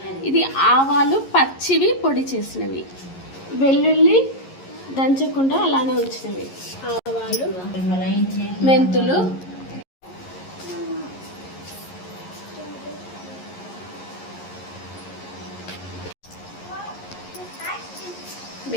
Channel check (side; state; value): right; late; 11 ms